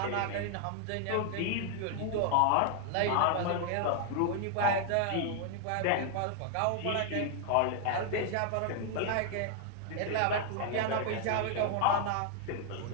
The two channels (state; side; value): different; both; correlation 0.00